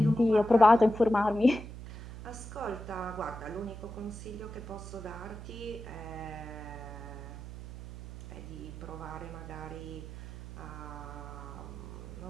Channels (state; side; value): noise; right; hum, 11 dB below the sound